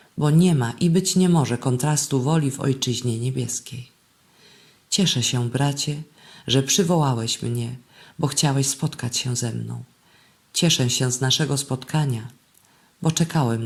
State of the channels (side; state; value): both; identical; correlation 1.00